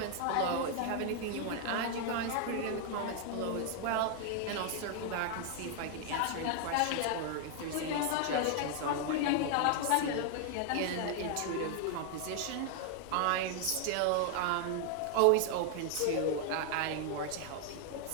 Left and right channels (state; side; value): different; both; correlation 0.00